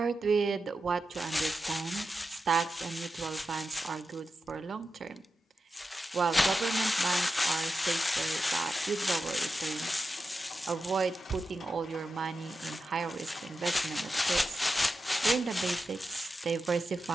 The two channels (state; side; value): normal; both; correlation 0.90